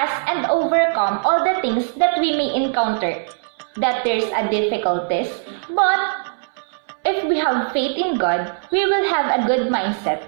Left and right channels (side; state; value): left; silent; 61 dB below the other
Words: and overcome all the things that we may encounter. That there's a difficulties, but if we have faith in God, we will have a good mindset